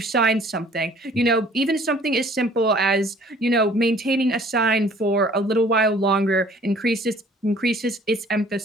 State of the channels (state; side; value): normal; both; correlation 0.54